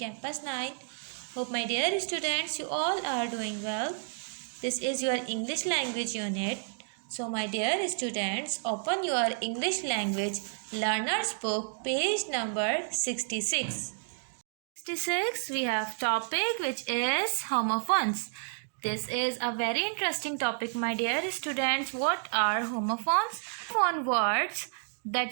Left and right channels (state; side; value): silent; left; digital silence